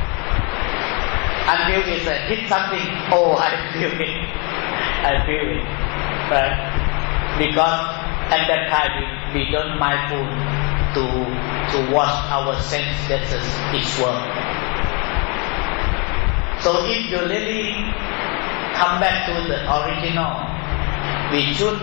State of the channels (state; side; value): quieter; right; 32.8 dB